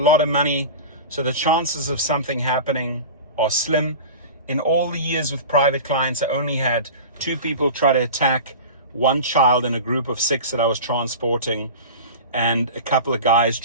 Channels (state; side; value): inverted; both; correlation -0.32